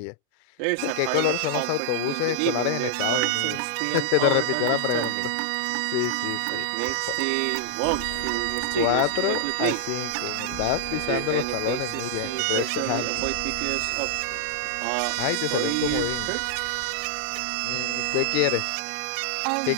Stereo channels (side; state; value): both; different; correlation -0.01